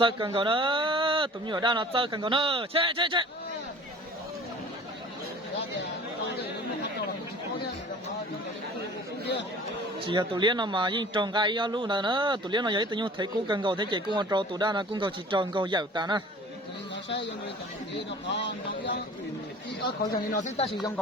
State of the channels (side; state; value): both; normal; correlation 0.45